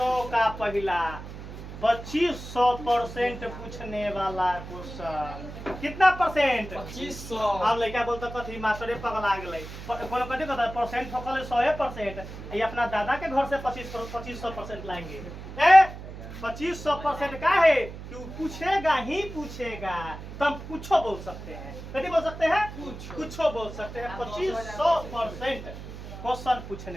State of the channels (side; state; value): right; noise; hum, 11 dB below the sound